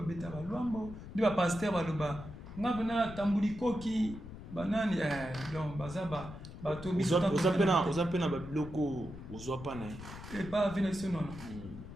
beta ba lwambo ndi ba pasteur ba loba nga bana tambuli koki banani donc bazaba bato oza pena babiloko ozwa pana pas vina ici non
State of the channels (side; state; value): left; noise; rumble, 12 dB below the sound